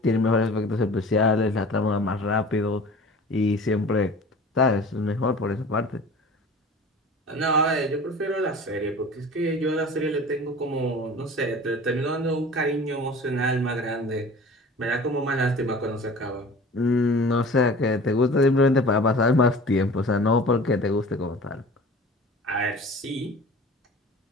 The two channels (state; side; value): normal; both; correlation 0.41